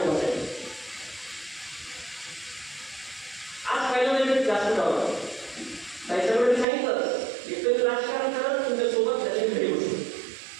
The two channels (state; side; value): drops out; left; at 6.7 s